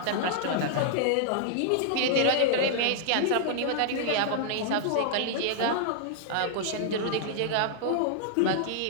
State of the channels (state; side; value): different; both; correlation -0.01